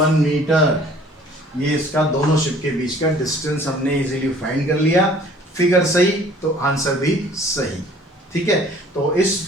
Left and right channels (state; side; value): normal; both; correlation 0.53